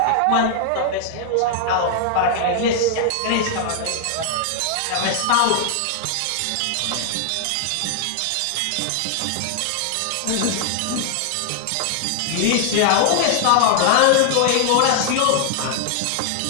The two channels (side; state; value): both; different; correlation 0.00